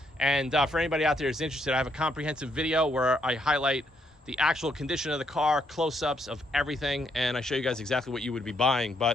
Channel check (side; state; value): both; normal; correlation 0.74